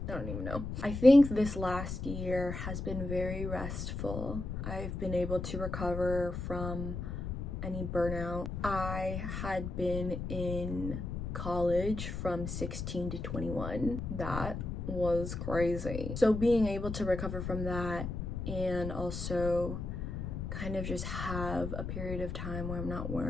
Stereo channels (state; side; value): noise; left; rumble, 5 dB below the sound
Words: I don't even know. I think this last year has been very restful. I've been able to recover from any burnout. I had been in college from 16 to 21. That was crazy. So being able to recover from that and also kind of just have a period of time where I'm not